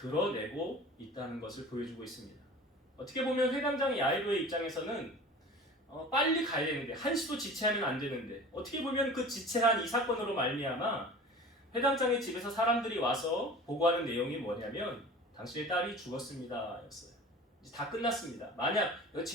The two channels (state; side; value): normal; both; correlation 0.40